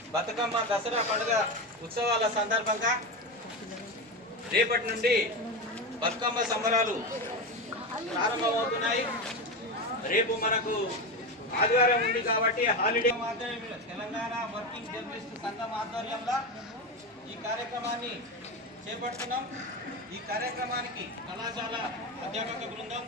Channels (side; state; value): both; normal; correlation 0.18